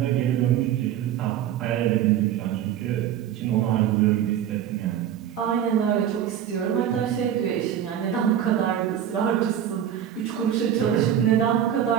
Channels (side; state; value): left; quieter; 10.1 dB